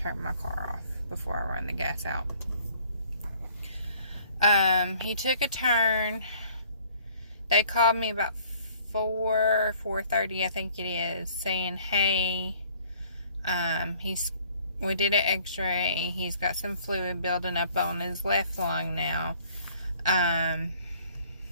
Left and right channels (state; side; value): inverted; both; correlation -0.57